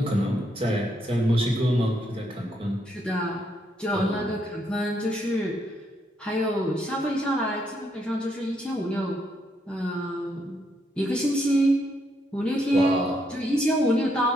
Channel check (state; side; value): normal; both; correlation 0.75